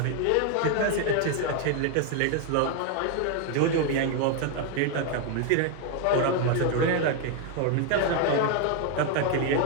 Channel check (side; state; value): both; different; correlation 0.00